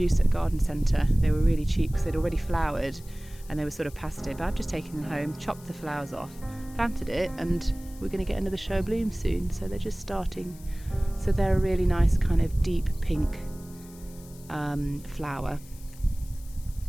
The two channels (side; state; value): left; noise; hiss, 22 dB below the sound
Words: at a garden centre. They were really cheap because they'd already flowered and they were sort of past it, but I've just taken them home, chopped the flowers off, planted it, and we're going to get another show of bloom soon. So they're just starting, so they're a really nice kind of deep pink flower.